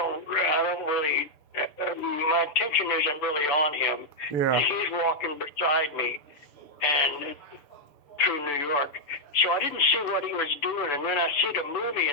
really. My attention isn't really on him. Yeah. He's walking beside me, and through New York. So I didn't see what he was doing, and then I see the movie,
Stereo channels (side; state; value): right; late; 6.9 ms